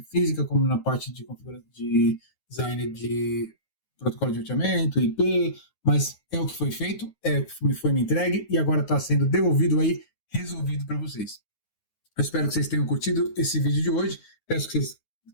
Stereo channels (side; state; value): right; late; 9.4 ms